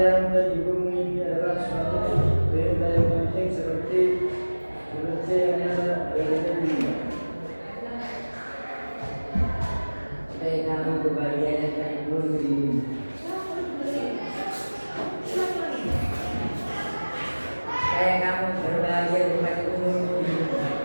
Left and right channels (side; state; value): both; inverted; correlation -1.00